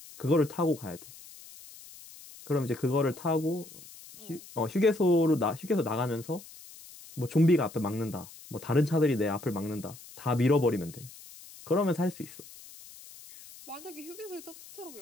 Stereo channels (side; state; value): left; noise; hiss, 18 dB below the sound